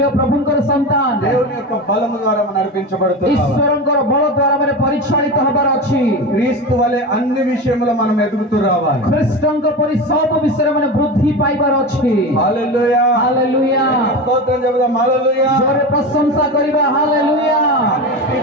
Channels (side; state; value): both; normal; correlation 0.24